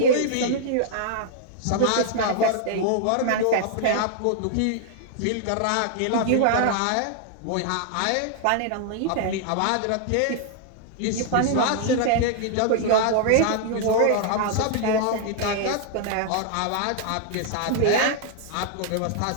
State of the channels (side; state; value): both; different; correlation 0.00